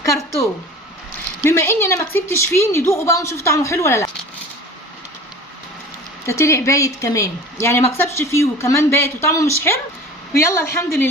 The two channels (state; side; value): normal; both; correlation 0.39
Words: كرتون. بما اني انا ما كسبتش فيه، ندوقه بقى ونشوف طعمه حلو ولا لا. ده طلع بايت كمان، يعني ما كسبش فيه وكمان بايت وطعمه مش حلو. ويلا الحمد